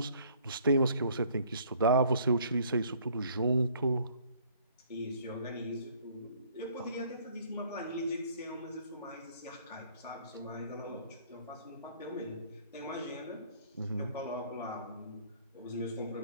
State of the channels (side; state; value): both; inverted; correlation -0.59